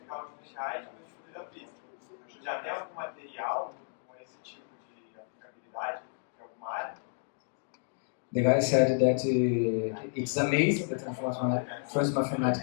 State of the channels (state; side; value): silent; right; digital silence